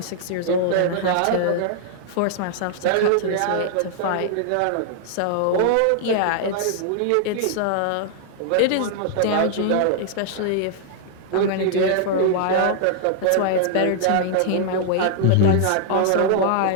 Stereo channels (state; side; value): different; both; correlation -0.01